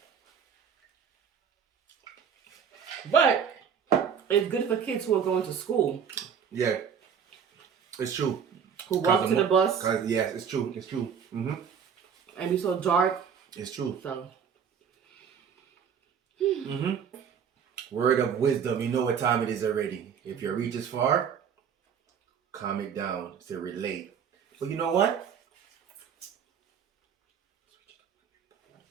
But it's good for kids who are going to school. Yeah, it's true. Who walk to the bus. Yes, it's true. It's true. And be so dark. It's true. So. Word of wisdom. You know what time it is already. If your reach is far, calm it down to relate. But you know what?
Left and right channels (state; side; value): quieter; left; 7.4 dB